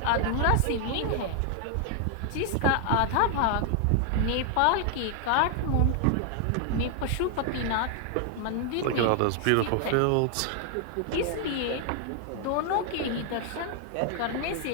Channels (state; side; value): different; both; correlation 0.00